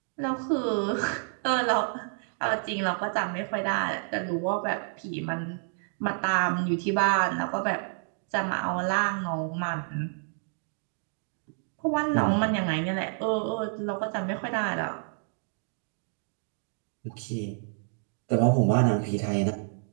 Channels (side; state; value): left; silent; 59 dB below the other